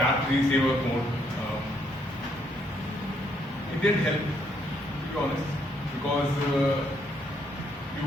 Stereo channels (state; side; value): normal; both; correlation 0.72